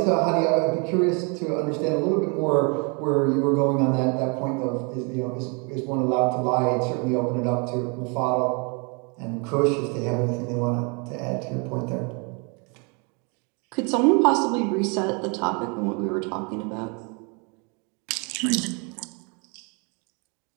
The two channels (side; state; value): left; quieter; 33.7 dB